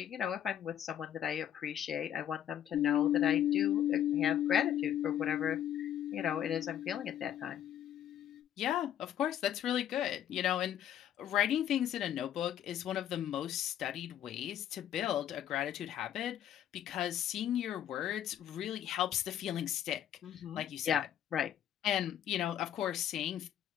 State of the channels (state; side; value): quieter; right; 10.5 dB